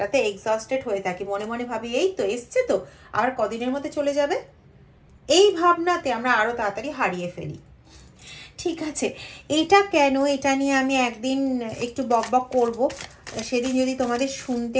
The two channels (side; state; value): both; identical; correlation 1.00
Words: এক্সস্টেড হয়ে থাকি। মনে মনে ভাবি এই তো এসছে, তো আর কদিনের মধ্যে চলে যাবে, এই ভাবনাতে আমরা আরো তাড়াতাড়ি হারিয়ে ফেলি, ঠিক আছে? এটা কেন, এটা নিয়ে আমি একদিন একটু বকবক করব, সেদিন যদি তোমাদের শুনতে